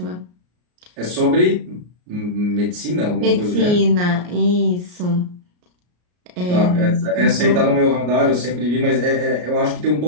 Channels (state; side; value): late; left; 33 ms